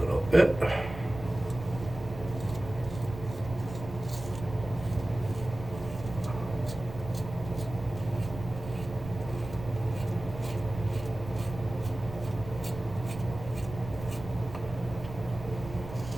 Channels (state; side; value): noise; right; rumble, 11 dB below the sound